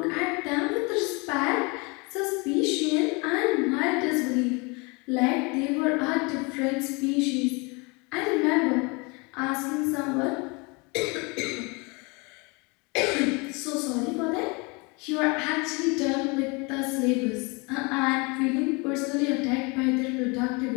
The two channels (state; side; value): quieter; right; 28.9 dB